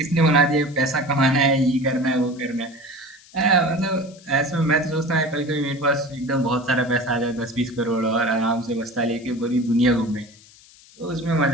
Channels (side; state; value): left; noise; hiss, 25 dB below the sound